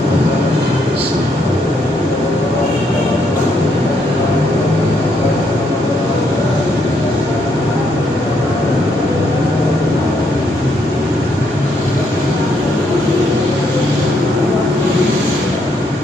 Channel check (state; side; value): normal; both; correlation 0.74